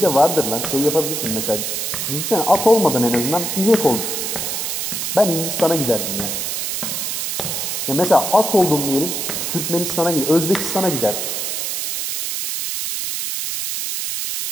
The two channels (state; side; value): noise; right; hiss, 2 dB below the sound